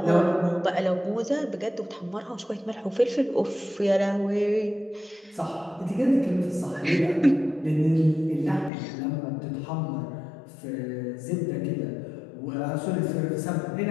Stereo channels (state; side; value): drops out; right; at 8.7 s